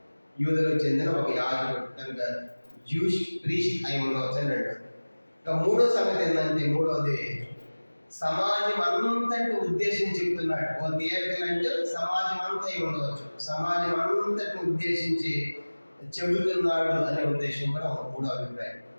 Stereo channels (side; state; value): both; inverted; correlation -1.00